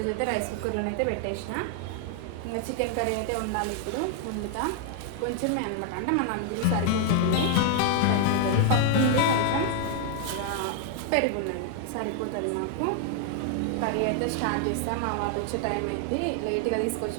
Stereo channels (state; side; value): different; both; correlation 0.00